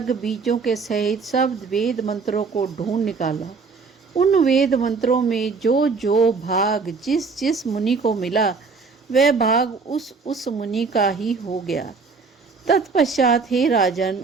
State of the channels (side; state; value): left; quieter; 4.7 dB